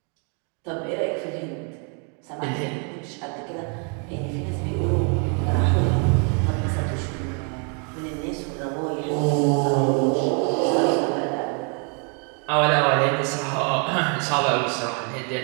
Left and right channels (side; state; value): left; quieter; 38.3 dB